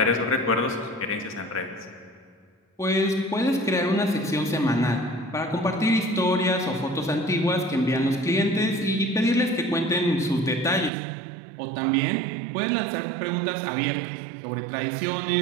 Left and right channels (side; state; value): left; drops out; at 10.9 s